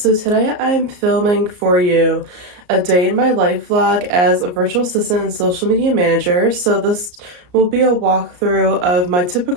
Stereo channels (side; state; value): left; late; 34 ms